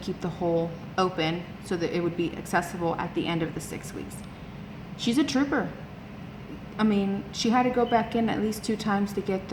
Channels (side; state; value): both; identical; correlation 1.00